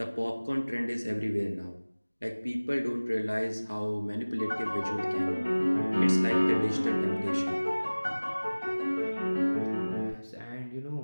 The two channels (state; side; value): inverted; both; correlation -1.00